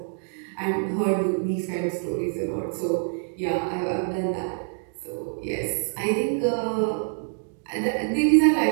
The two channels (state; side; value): silent; left; digital silence